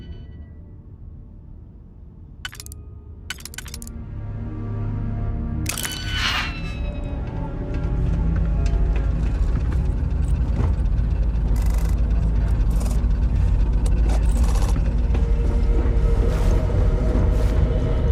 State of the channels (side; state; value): both; identical; correlation 1.00